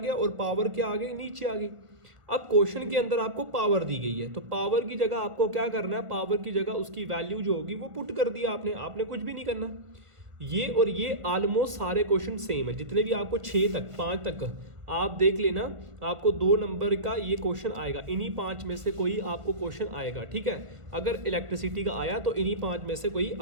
और पावर क्या आ गई, नीचे आ गई। अब क्वेश्चन के अंदर आपको पावर दी गई है, तो पावर की जगह आपको क्या करना है, पावर की जगह उसकी वैल्यू जो होगी वो पुट कर दिया आपने कुछ भी नहीं करना। ये और ये ऑलमोस्ट सारे क्वेश्चन सेम है, जितने भी आपको 6 तक 5 तक आप देख लेना, आपको 2 नंबर का ये क्वेश्चन आएगा, इन्हीं 5 में से कोई आपको क्वेश्चन आएगा, ठीक है। अगर इलेक्ट्रिसिटी का आया तो इन्हीं 5 में से कोई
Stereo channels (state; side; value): late; left; 1.5 ms